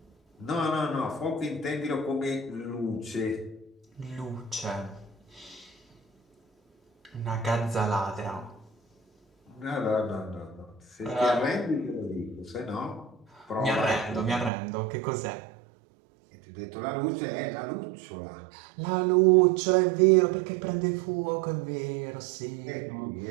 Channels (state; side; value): drops out; left; at 14.5 s